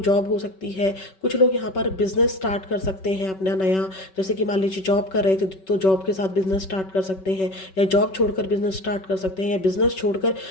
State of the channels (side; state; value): right; late; 5.3 ms